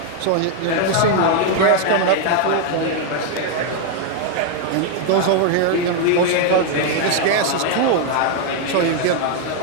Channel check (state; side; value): different; both; correlation 0.00